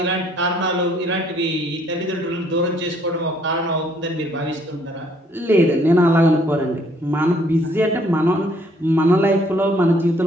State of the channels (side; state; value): both; normal; correlation 0.64